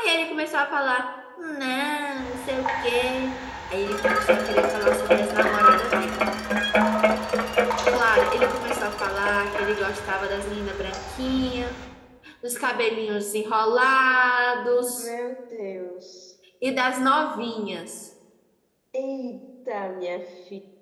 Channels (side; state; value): both; identical; correlation 1.00